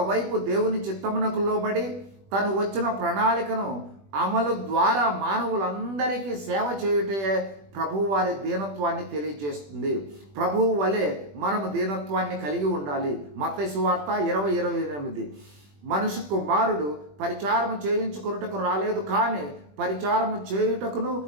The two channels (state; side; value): late; left; 21 ms